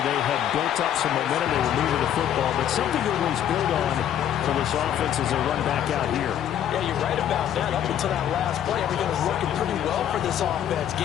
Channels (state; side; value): quieter; right; 10.3 dB